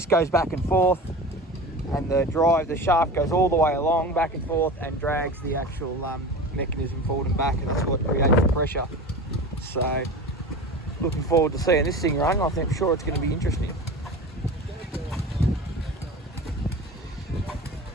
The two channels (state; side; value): normal; both; correlation 0.32